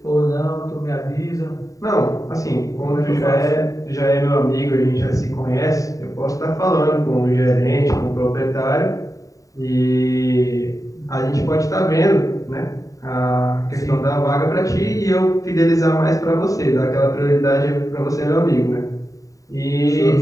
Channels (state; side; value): late; right; 0.16 ms